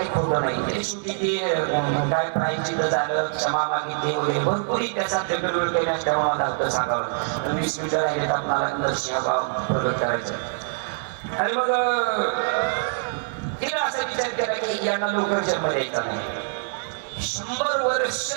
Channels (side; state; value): left; silent; digital silence